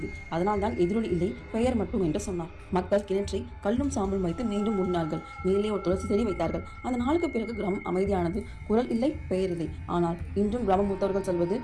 அதனால் தான் எதிரொலி இல்லை, பெயர் மட்டும் என்று சொன்னார். மக்கள் கிணற்றை கல்லும் சாம்பலும் வைத்து மீண்டும் மூடினார்கள். மேலே ஒரு துளசி செடி வைத்தார்கள். அந்த நாளுக்கு பிறகு கிராமம் அமைதியானது. குரல் இல்லை, பெயர் இல்லை. ஆனால் இன்றும் கிராம மூத்தவர்கள் சொல்வது,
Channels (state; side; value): identical; both; correlation 1.00